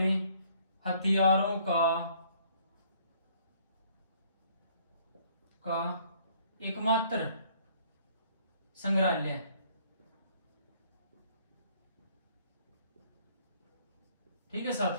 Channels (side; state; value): both; inverted; correlation -0.61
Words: हथियारों का एकमात्र संग्रहालय, ठीक है